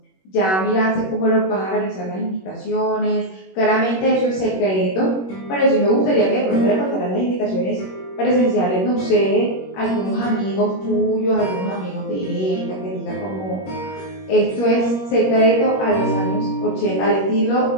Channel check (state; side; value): late; right; 21 ms